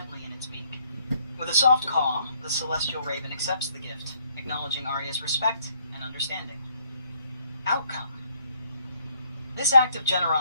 in its beak. With a soft caw, the celestial raven accepts the gift, acknowledging Arya's respect and understanding. Outcome. This act of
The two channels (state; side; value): inverted; both; correlation -0.67